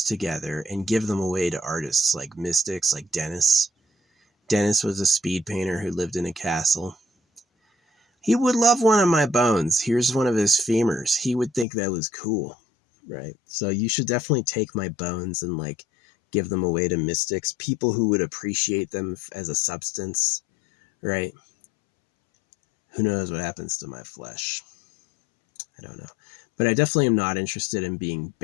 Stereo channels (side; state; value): right; drops out; at 11.7 s